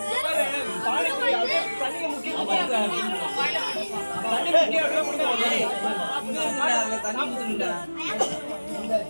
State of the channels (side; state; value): both; inverted; correlation -1.00